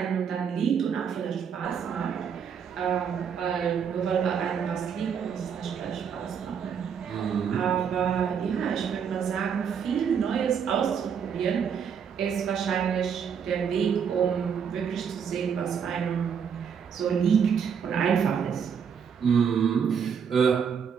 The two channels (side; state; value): left; quieter; 7.2 dB